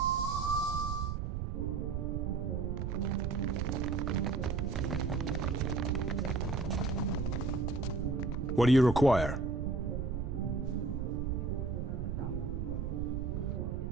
What do you require?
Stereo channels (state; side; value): noise; right; rumble, 1 dB below the sound